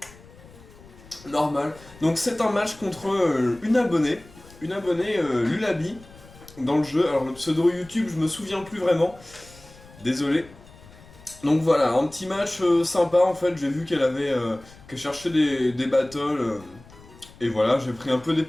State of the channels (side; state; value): left; noise; rumble, 22 dB below the sound